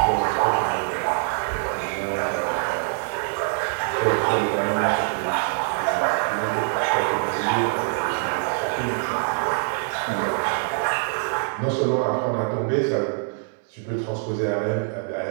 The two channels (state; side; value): silent; left; digital silence